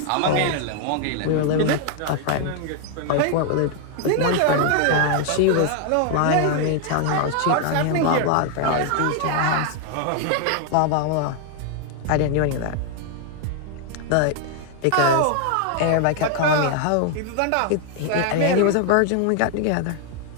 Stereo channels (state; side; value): different; both; correlation 0.00